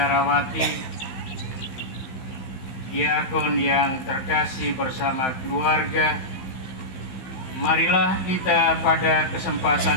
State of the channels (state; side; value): late; right; 15 ms